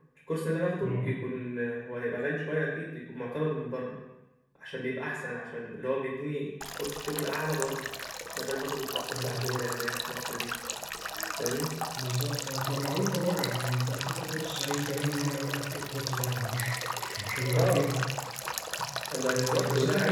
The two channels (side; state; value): both; identical; correlation 1.00